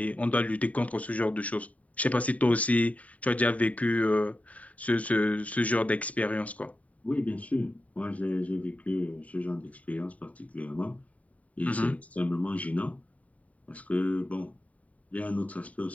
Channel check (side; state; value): right; late; 0.069 ms